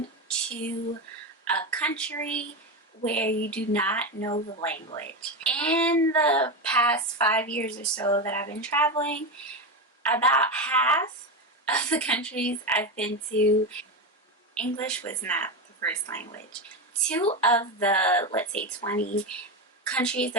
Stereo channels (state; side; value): normal; both; correlation 0.15